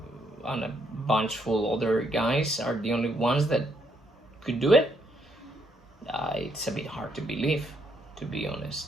and a bunch full other guys are the only ones that could do it. It's a bit hard to believe, to be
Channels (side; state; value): both; normal; correlation 0.73